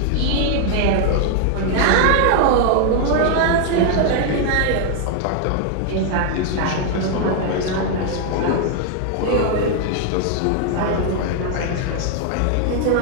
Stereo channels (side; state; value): both; different; correlation 0.00